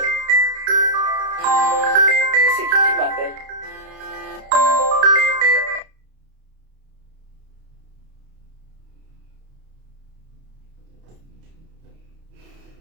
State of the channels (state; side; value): late; left; 31 ms